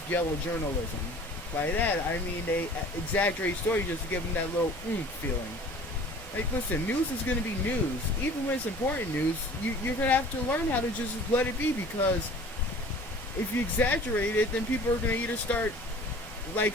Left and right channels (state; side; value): normal; both; correlation 0.46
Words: yellow journalism. By that, I mean they exaggerate stories just to give them that little feeling. Like, listen, news is going to be news. Even when it's important news, you're going to have to learn how to just let it be, because if you exaggerate it, then people are going to either start, like,